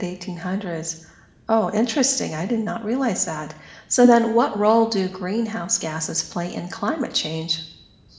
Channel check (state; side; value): identical; both; correlation 1.00